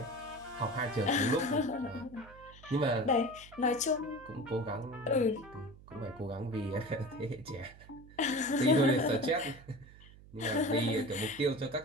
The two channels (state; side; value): noise; right; hum, 20 dB below the sound